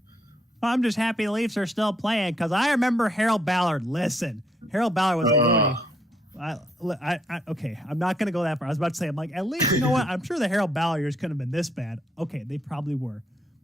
I'm just happy the Leafs are still playing, because I remember Harold Ballard. Listen, Harold Ballard was a Looney. Okay, I'm not going to go that far. I was about to say, I'm like, at least, you know what? I'm sure the Harold Ballard years couldn't have been this bad. Okay, they probably were.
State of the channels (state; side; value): normal; both; correlation 0.72